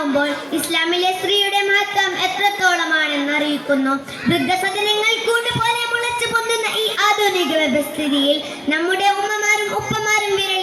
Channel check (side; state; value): both; identical; correlation 1.00